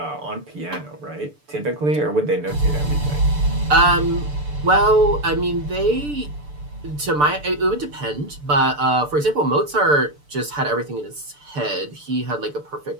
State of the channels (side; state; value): left; late; 6.8 ms